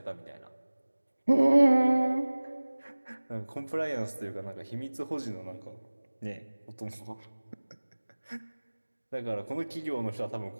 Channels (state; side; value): inverted; both; correlation -1.00